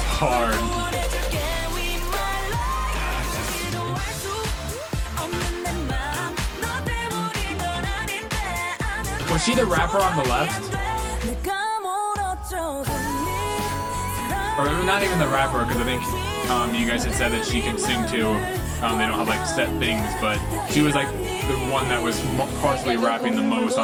hard. Was she the rapper on the left? Or not even the rapper, because I think you guys had said that she can sing too. They don't have like set things, but she was like the one that was possibly rapping the most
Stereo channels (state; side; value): identical; both; correlation 1.00